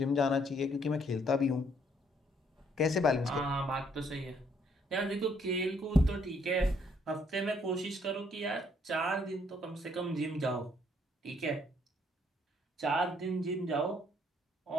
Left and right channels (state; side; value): normal; both; correlation 0.67